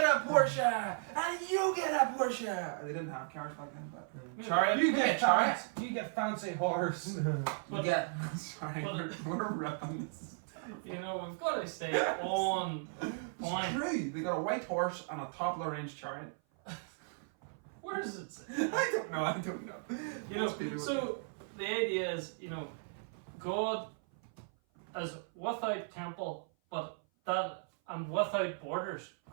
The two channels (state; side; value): silent; left; 54 dB below the other